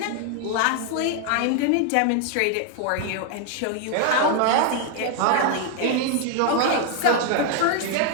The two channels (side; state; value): both; different; correlation 0.00